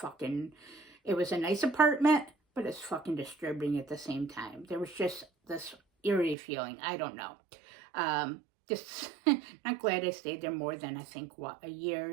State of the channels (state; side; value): drops out; left; at 6.4 s